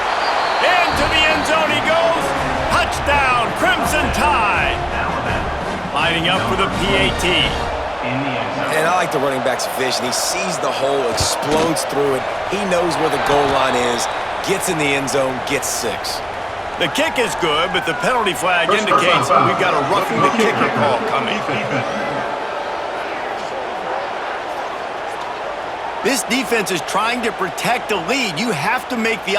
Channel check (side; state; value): both; identical; correlation 1.00